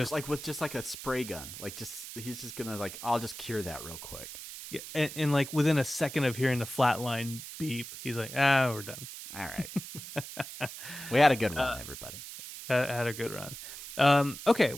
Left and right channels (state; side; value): noise; right; hiss, 11 dB below the sound